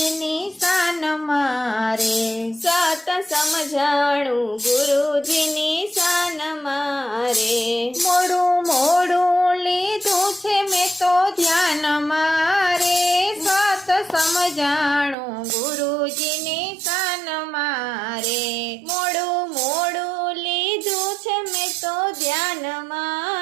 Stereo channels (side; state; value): left; drops out; at 15.2 s